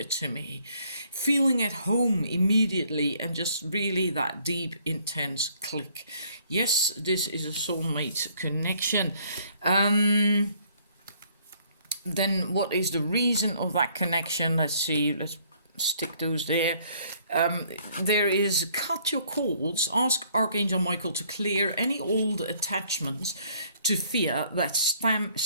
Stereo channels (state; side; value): inverted; both; correlation -0.63